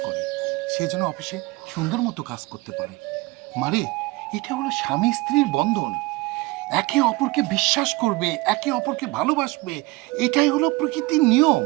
করে, সে যেন অফিসে সুন্দর মতো কাজ করতে পারে। মারে, এটা হলো স্বামী স্ত্রীর বন্ধন। একে অপরকে বিশ্বাস করবে, একে অপরকে ভালোবাসবে, এটাই হলো প্রকৃতির নিয়ম।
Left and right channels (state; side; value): quieter; left; 21.7 dB